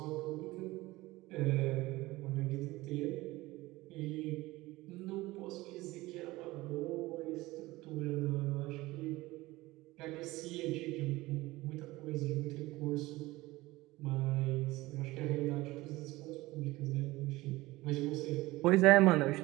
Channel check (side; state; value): left; quieter; 19.4 dB